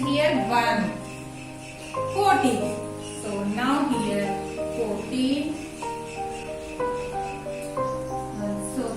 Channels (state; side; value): identical; both; correlation 1.00